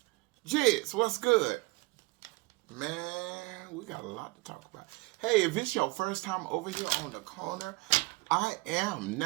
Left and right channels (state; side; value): quieter; left; 23.5 dB